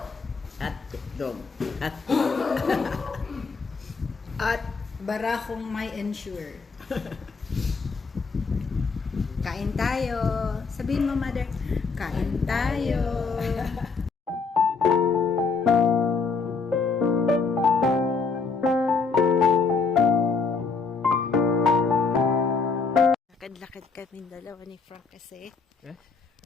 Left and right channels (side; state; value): right; quieter; 4.7 dB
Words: at itlog. At barakong may ensure. Kain tayo. Sabihin mo, mother, kain tayo. Lakad-lakad kami dalawa ni Frank kasi.